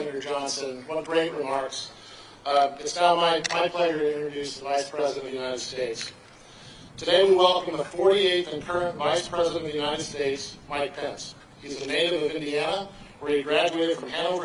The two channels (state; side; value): identical; both; correlation 1.00